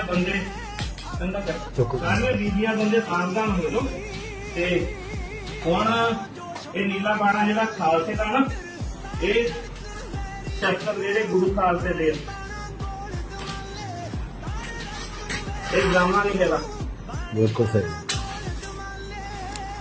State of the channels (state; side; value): identical; both; correlation 1.00